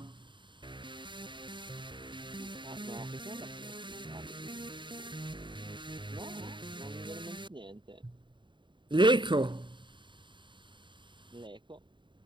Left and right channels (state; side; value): late; left; 0.23 ms